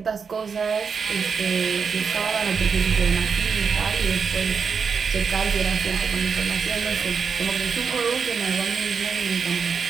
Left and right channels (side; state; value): left; quieter; 5.8 dB